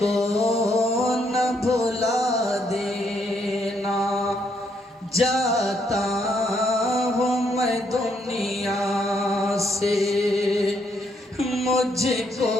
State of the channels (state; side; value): normal; both; correlation 0.74